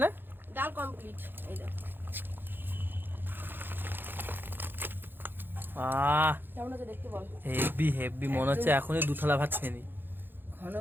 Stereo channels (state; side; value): late; left; 0.098 ms